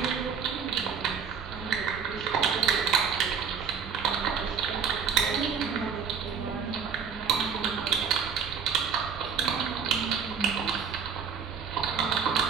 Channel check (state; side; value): quieter; left; 6.5 dB